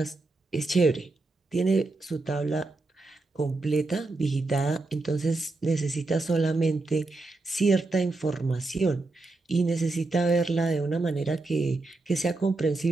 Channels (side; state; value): left; quieter; 3.2 dB